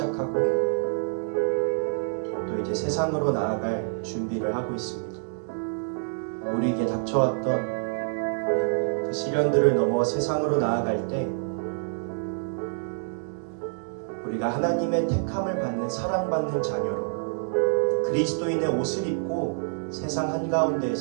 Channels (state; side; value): silent; left; digital silence